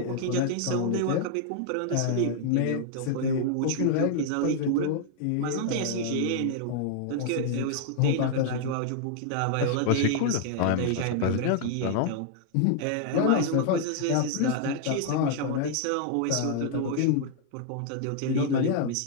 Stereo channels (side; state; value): both; different; correlation 0.00